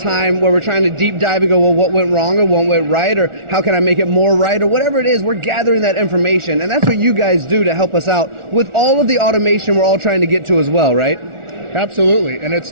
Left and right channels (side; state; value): left; late; 1.4 ms